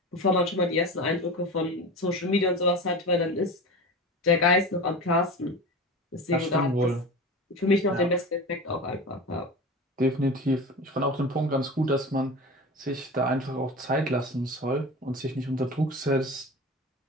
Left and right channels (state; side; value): normal; both; correlation 0.30